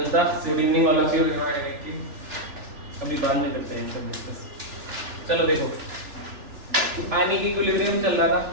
good evening all of you. अभी बाद में करते हैं सब डिस्कस। चलो देखो, आयनिक इक्विलिब्रियम चल रहा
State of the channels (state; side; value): late; left; 3.4 ms